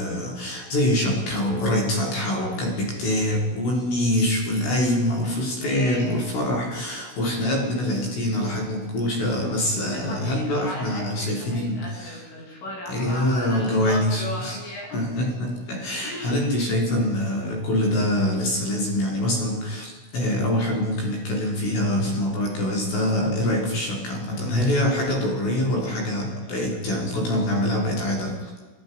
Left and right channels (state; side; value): late; right; 16 ms